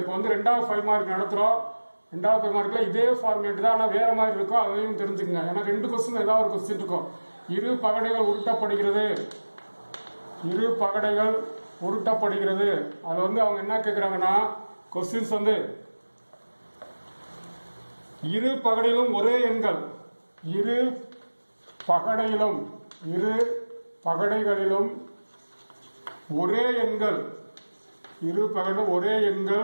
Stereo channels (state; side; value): inverted; both; correlation -1.00